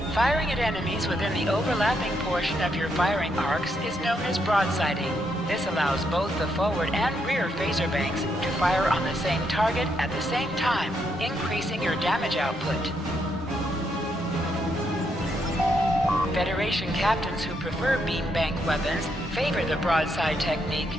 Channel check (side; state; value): both; normal; correlation 0.78